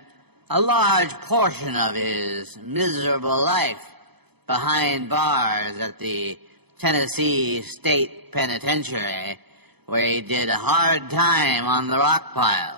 a large portion of his miserable life behind bars at the Tennessee State Penitentiary, where he did a hard time on the rock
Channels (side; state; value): left; late; 0.98 ms